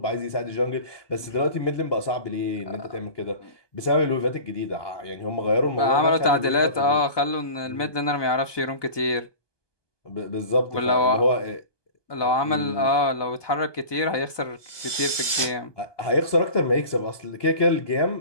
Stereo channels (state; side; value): late; right; 1.2 ms